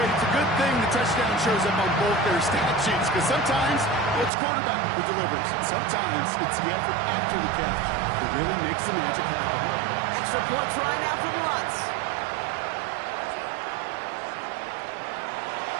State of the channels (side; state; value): left; drops out; at 4.3 s